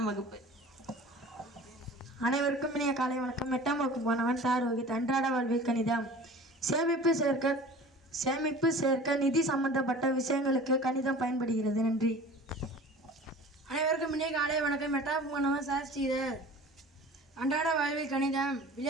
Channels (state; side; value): normal; both; correlation 0.41